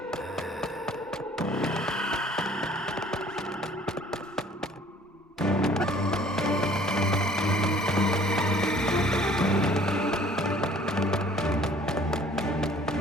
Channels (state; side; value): normal; both; correlation 0.54